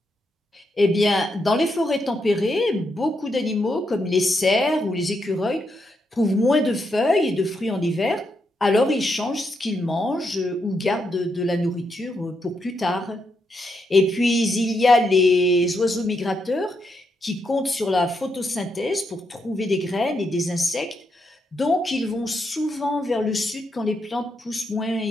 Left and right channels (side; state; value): both; normal; correlation 0.81